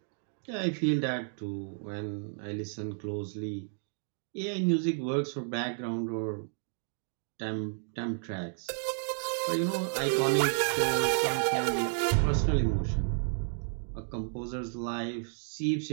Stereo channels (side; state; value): left; silent; 57 dB below the other